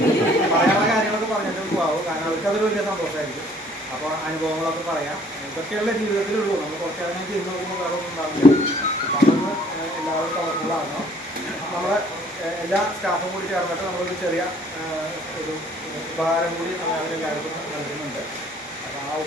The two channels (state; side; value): normal; both; correlation 0.58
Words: പറയാനുള്ള കാര്യങ്ങളൊക്കെ പറഞ്ഞിട്ട് പോകാവും. കാരണം അവർക്കതൊരു വലിയ സന്തോഷമായിരിക്കും. അപ്പോൾ അനുഭവങ്ങളൊക്കെ പറയാം. ഇതൊക്കെയുള്ള ജീവിതത്തിലുള്ളൂ. നമ്മൾ കുറച്ച് കാര്യം ചെയ്ത് നോക്കുമ്പോൾ വേറെ ഒന്നും ഉണ്ടാവില്ല. അതൊന്ന് എല്ലാവരും കളർഫുള്ളാകണം. നമ്മുടെ എല്ലാ സ്റ്റാഫും കൂടി ചേർന്നിട്ട് നമ്മളൊരു ചെറിയ ഒരു ഉപഹാരം കൂടി അവരെല്ലാവർക്കും നൽകുന്നുണ്ട്. അപ്പോൾ ആ